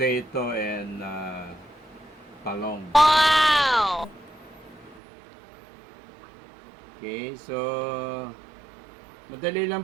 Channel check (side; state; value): left; drops out; at 5.0 s